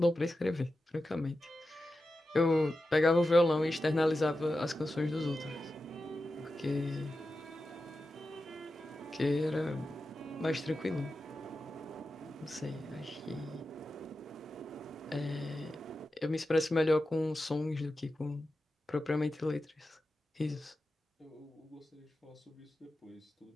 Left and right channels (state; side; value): normal; both; correlation 0.91